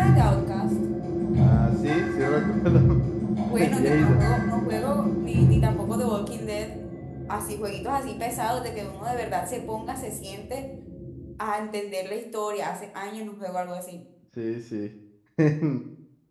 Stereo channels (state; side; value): identical; both; correlation 1.00